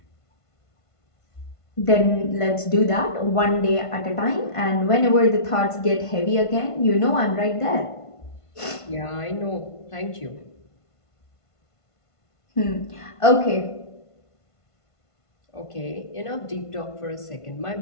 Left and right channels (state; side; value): late; right; 1.5 ms